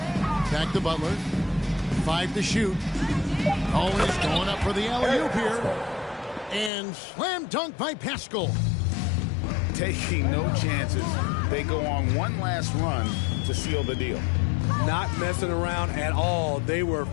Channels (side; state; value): right; drops out; at 6.7 s